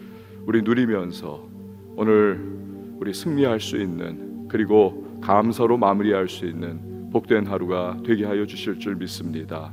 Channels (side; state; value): both; identical; correlation 1.00